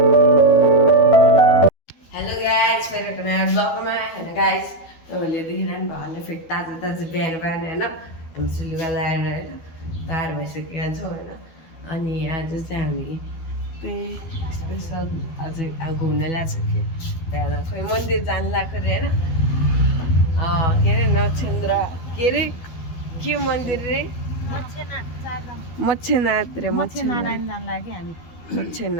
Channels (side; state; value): right; late; 12 ms